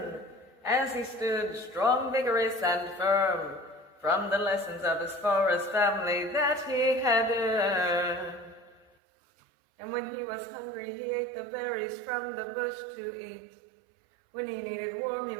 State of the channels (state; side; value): drops out; left; at 8.8 s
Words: as he stood strong, vigorous, and firm, from the lessons of his forest family that he had earned. And when he was hungry, he ate the berries from the bush to eat. When he needed warmth, he